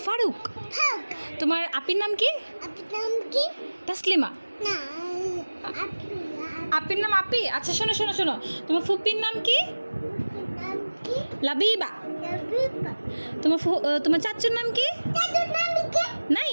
ফারুক। হাক। তোমার আপির নাম কি? আপনার নাম কি? তাসলিমা। না। আপির নাম আপি। আচ্ছা শোনো শোনো শোনো, তোমার ফুপির নাম কি? নাম কি? লাবিবা। লাবিবা। তোমার চাচুর নাম কি? দাদার নাম কি?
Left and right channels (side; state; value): both; inverted; correlation -1.00